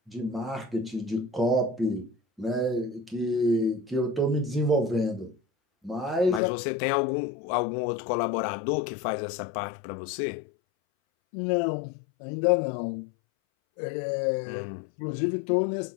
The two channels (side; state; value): right; drops out; at 6.4 s